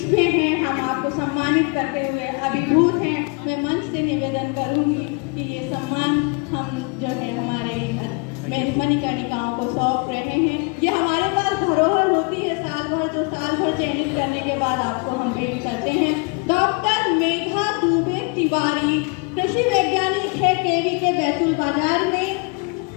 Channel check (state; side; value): quieter; right; 32.5 dB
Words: में है। हम आपको सम्मानित करते हुए अभिभूत हैं। मैं मंच से निवेदन करूंगी कि ये सम्मान हम जो है हमारे मणिकर्णिकाओं को सौंप रहे हैं। ये हमारे पास धरोहर होती है साल भर, जो साल भर चयनित करने के बाद आपको हम भेंट करते हैं। डॉक्टर मेघा दुबे तिवारी कृषि वैज्ञानिक है, केवी के बैतूल बाजार में